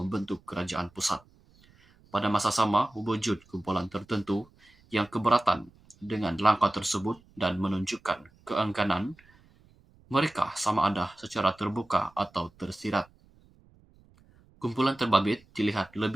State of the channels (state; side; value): noise; right; rumble, 29 dB below the sound